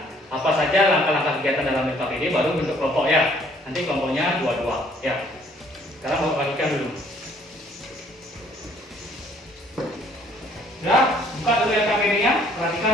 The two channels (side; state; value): both; normal; correlation 0.61